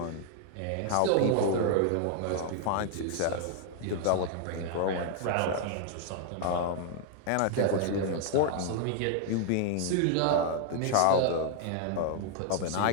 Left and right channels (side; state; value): both; different; correlation 0.00